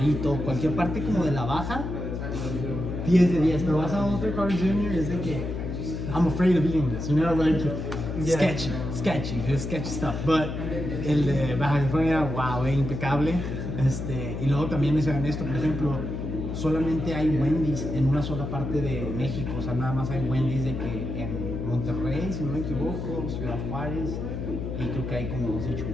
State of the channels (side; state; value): left; noise; hum, 5 dB below the sound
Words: cualquier parte como de la baja, 10 de 10. Pero vas a otro Cars Jr. es de que, I'm afraid of eating this, you know, like, Yeah. sketchy stuff. But el de Baja California, wow, impecable. Y luego también les hagan esto, por ejemplo, solamente hay Wendy's en una sola parte de México, o sea, nada más hay Wendy's de que en Monterrey, si no me equivoco, Ciudad Juárez, y creo que hay como 2 en